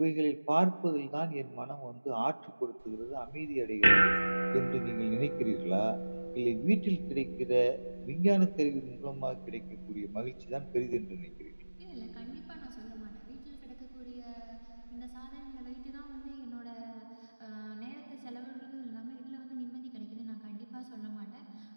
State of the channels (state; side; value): inverted; both; correlation -1.00